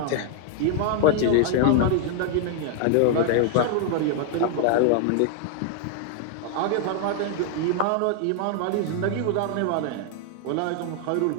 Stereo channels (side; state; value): both; different; correlation 0.00